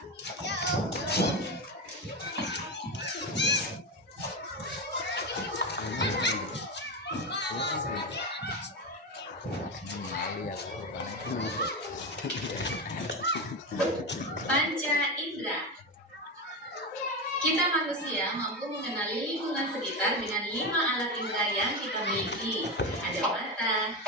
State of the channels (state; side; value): normal; both; correlation 0.17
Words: Panca indera. Kita manusia mampu mengenali lingkungan sekitar dengan 5 alat indera yang kita miliki. Ada mata,